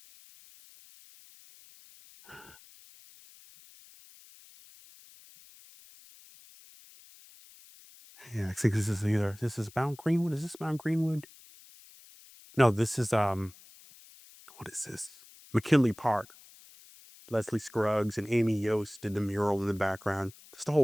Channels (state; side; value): noise; left; hiss, 23 dB below the sound